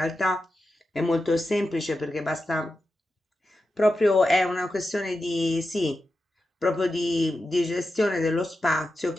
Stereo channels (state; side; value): normal; both; correlation 0.90